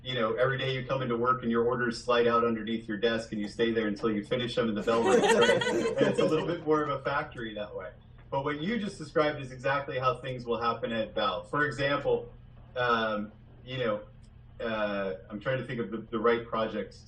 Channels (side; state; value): both; identical; correlation 1.00